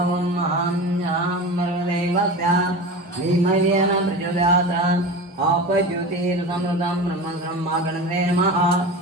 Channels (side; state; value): both; normal; correlation 0.30